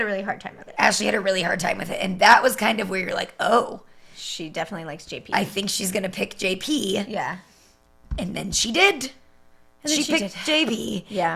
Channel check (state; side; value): identical; both; correlation 1.00